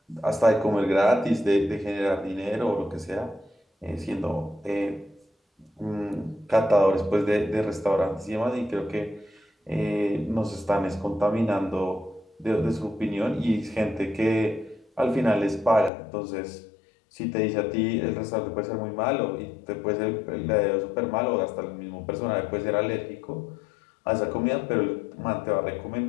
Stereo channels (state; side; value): drops out; right; at 15.9 s